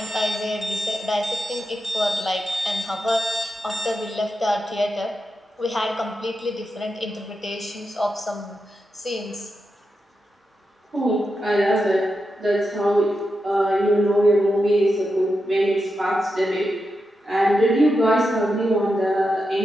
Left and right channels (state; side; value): normal; both; correlation 0.88